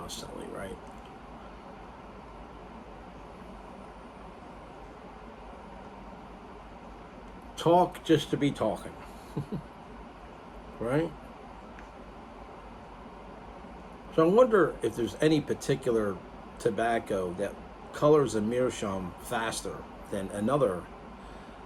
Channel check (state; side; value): identical; both; correlation 1.00